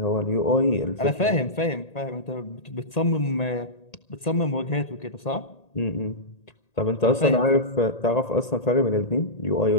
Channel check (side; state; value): right; late; 1.8 ms